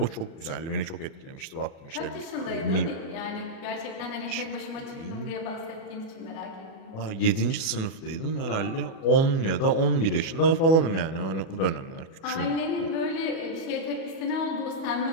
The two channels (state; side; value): late; right; 37 ms